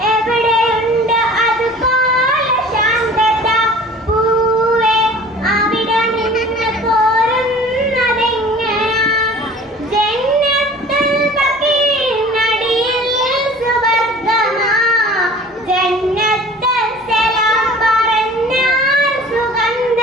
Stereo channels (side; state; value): both; normal; correlation 0.45